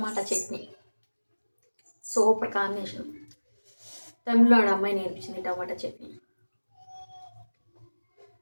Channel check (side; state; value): both; inverted; correlation -1.00